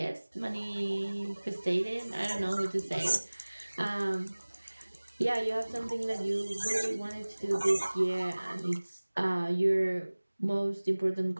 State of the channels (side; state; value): both; inverted; correlation -1.00